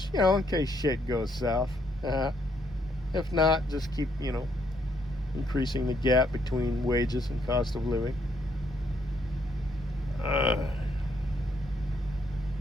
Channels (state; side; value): normal; both; correlation 0.73